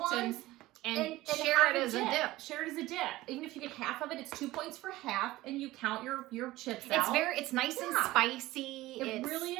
ones. And share have it as a dip. Share it as a dip. Even if you get half of it, it's 2 points for half, and you count your chips out. It's nice and spicy. It really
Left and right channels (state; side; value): quieter; left; 17.7 dB